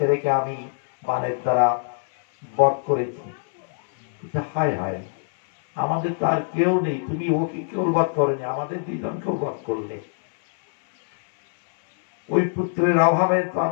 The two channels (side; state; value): right; silent; 63 dB below the other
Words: আমি বানের দ্বারা বধ করেছি। হায় হায়, আমাদের তো আর কেউ নেই, তুমি ওকে কেউ বধ করেনি, আমাদের দুইজনকেও বধ করলে। ওই পুত্রের অভাবে তো